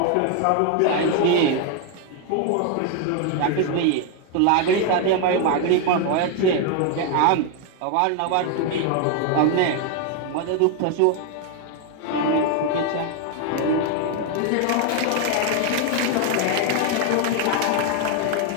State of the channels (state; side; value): different; both; correlation 0.00